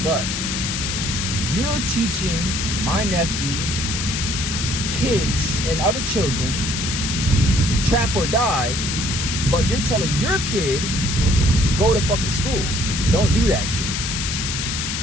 but. You're teaching my nephew, kids, and other children trap or die, but you're telling your kid go to fucking school. Don't do that shit.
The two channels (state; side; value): noise; left; hiss, 2 dB below the sound